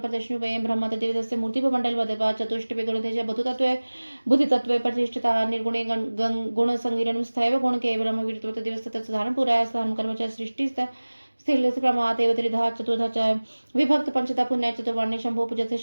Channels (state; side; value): inverted; both; correlation -1.00